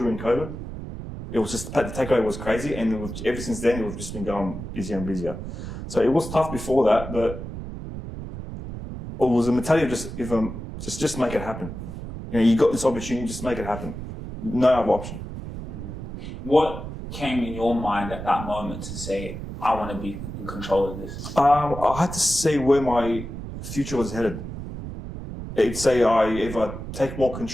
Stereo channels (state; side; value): noise; right; rumble, 9 dB below the sound